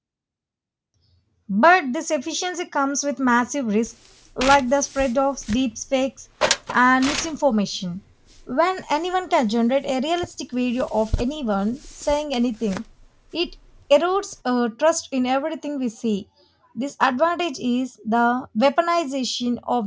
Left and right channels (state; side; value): identical; both; correlation 1.00